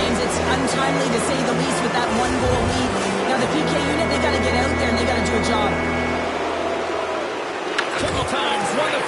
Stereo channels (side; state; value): both; identical; correlation 1.00